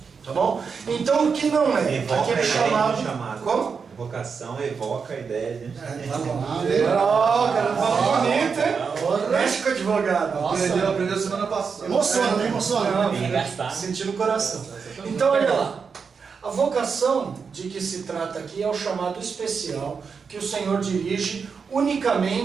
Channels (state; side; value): quieter; left; 5.7 dB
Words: Tá bom? Então o que não é? Aqui é chamado. Como? Vocação evoca a ideia de... Cara, fala bonito, hein? Mexe com o advogado. Aprendeu semana passada. Emociona. Sentir no coração. Então, olha lá. A vocação de que se trata aqui é o chamado especial que o Senhor dirige